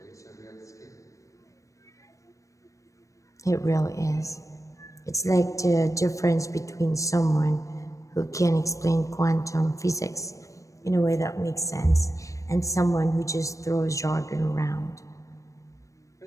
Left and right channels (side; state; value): right; late; 0.16 ms